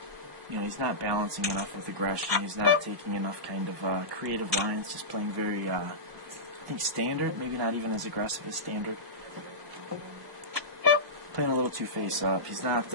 he's not balancing enough with aggression. He's not taking enough kind of creative lines. Just playing very, I think, standard. Maybe not even as aggressive as standard. Playing a little too face up. He's not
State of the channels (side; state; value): left; late; 1.1 ms